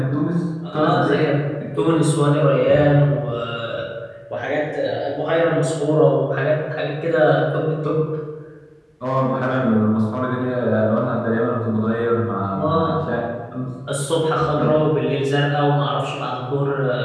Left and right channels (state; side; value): identical; both; correlation 1.00